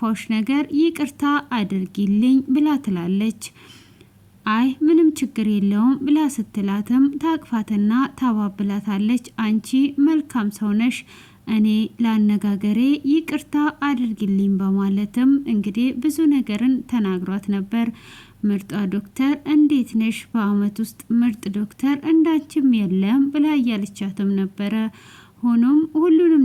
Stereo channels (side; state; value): both; identical; correlation 1.00